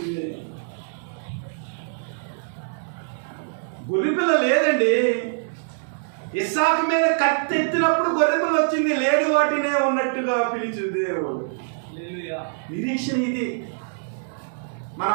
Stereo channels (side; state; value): left; silent; digital silence